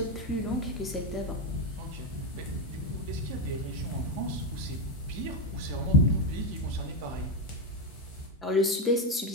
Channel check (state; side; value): normal; both; correlation 0.09